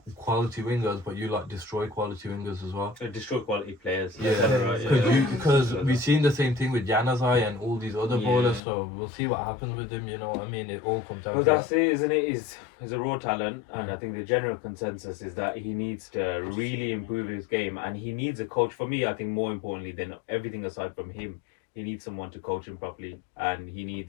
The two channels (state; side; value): drops out; right; at 8.6 s